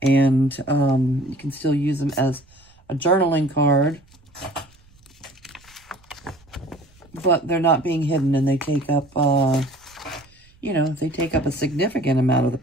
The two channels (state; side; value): noise; right; rumble, 29 dB below the sound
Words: and you can still use them as a journaling card, but they're not being hidden and they take up, you know, they take up a significant amount of the